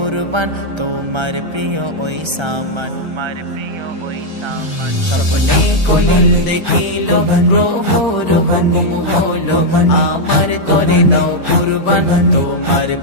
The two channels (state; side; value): late; left; 1.3 ms